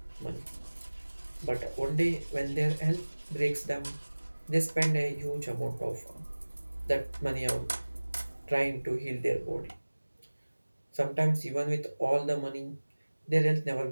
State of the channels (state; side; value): inverted; both; correlation -1.00